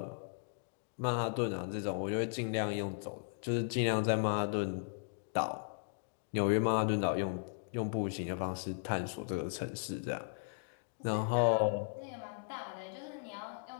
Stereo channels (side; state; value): right; silent; digital silence